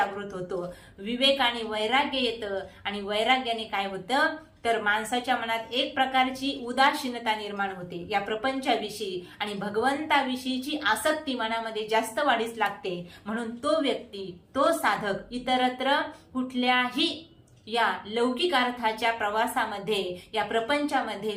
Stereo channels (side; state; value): both; identical; correlation 1.00